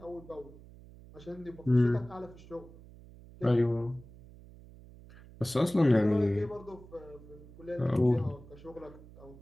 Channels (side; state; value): right; noise; hum, 20 dB below the sound